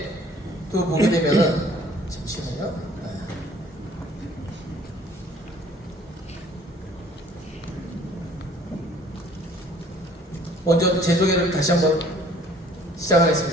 또 보게 되면은 잠시만요. 먼저 제 소개를 다시 한번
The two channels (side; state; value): both; normal; correlation 0.55